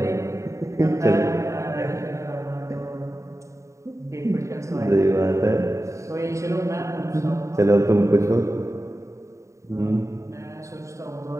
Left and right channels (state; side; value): late; left; 0.15 ms